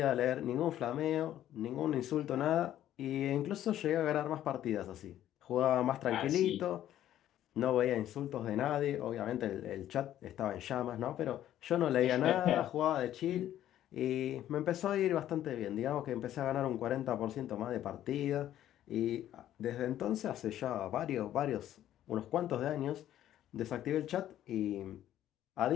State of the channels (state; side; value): quieter; right; 12.1 dB